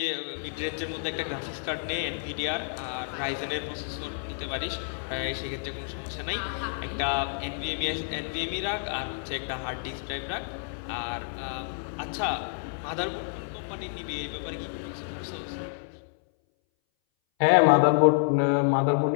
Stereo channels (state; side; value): silent; right; 59 dB below the other